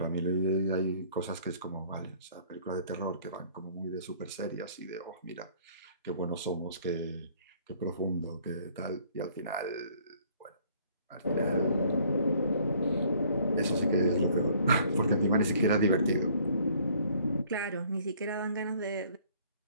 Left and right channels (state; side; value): inverted; both; correlation -0.59